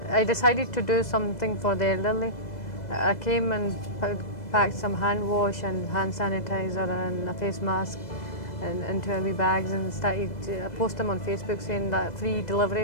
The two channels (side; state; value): right; late; 2.0 ms